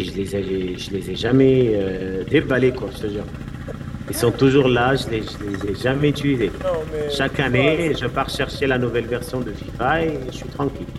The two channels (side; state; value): both; identical; correlation 1.00